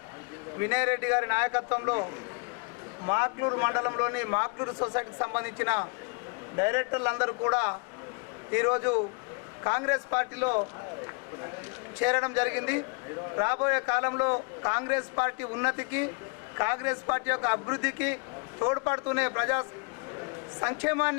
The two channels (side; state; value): right; quieter; 34.0 dB